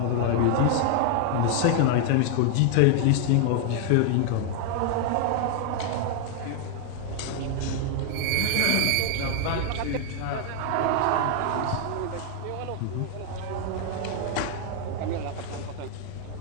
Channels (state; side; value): different; both; correlation 0.00